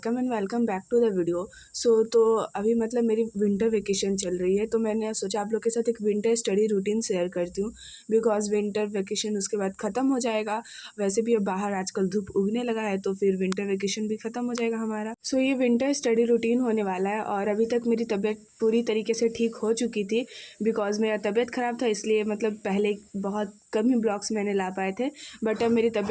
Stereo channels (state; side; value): identical; both; correlation 1.00